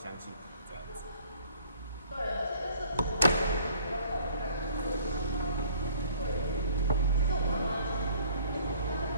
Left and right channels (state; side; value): inverted; both; correlation -0.57